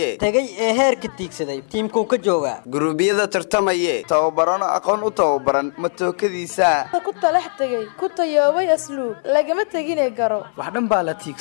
tagay ee heerka tiigsaday tiimkuu ka jooga guruubiyada tartamaye tababarano aqoon u tababaran matookadiisa ku talax tagay ku tayoobay asluub lagama taginay garo wax dhan baa la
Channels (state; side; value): silent; right; 61 dB below the other